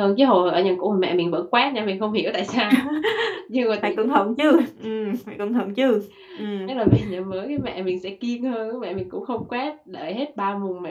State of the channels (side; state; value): both; identical; correlation 1.00